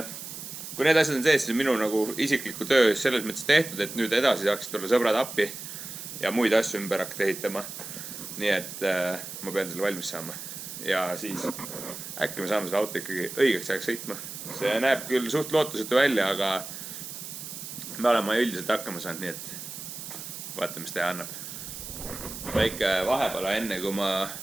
kui need asjad on sees, siis minu nagu isikliku töö selles mõttes tehtud, et nüüd edasi saaks tulla sõbrad appi ja muid asju ümber hakata ehitama. Nii et ma pean selle valmis saama ja siis äkki me saame selle auto ikkagi õigeks ajaks sõitma. See näeb küll suht lootusetu välja, aga me oleme üldiselt hakkama saanud, nii et vaatame, mis teha annab. Väike vahepala enne, kui ma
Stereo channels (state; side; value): noise; right; hiss, 9 dB below the sound